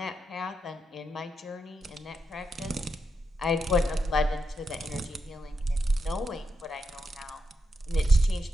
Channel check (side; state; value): both; normal; correlation 0.85